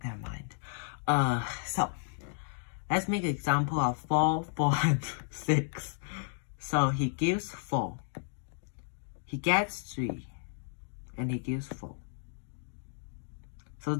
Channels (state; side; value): silent; right; 56 dB below the other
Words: Never mind. So let's make an example of 4, 4, and 6. So he gives 4. He gets 3. And he gives 4. So